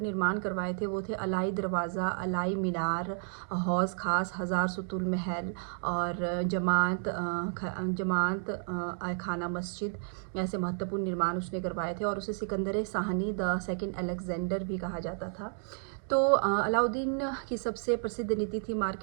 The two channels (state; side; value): silent; left; 57 dB below the other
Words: निर्माण करवाए थे वो थे अलाई दरवाज़ा, अलाई मीनार, हौज़ खास, हज़ार सुतुल महल और जमात खाना मस्जिद। ऐसे महत्वपूर्ण निर्माण उसने करवाए थे और उसे Sikandar Shahani the second Alexander भी कहा जाता था। तो अलाउद्दीन की सबसे प्रसिद्ध नीति थी